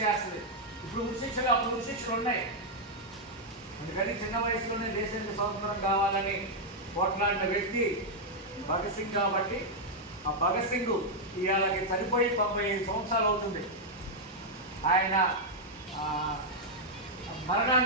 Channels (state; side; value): normal; both; correlation -0.02